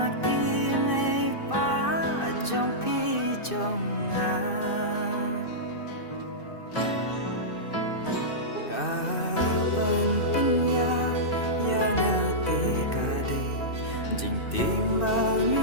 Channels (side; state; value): right; late; 2.6 ms